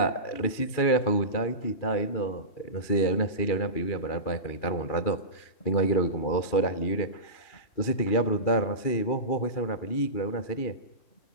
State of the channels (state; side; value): late; right; 2.4 ms